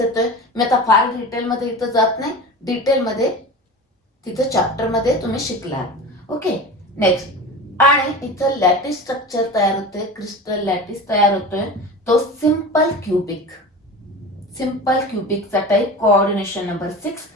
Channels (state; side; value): normal; both; correlation 0.32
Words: मी आता फार डिटेल मध्ये इथं जात नाही, डिटेल मध्ये तिथं चॅप्टर मध्ये तुम्ही शिकला. Okay, next. आणि इथं लॅटिस स्ट्रक्चर तयार होते, क्रिस्टल लॅटिस तयार होतोय, तो सिंपल क्युबिक. सिंपल क्युबिकचा type, coordination number 6,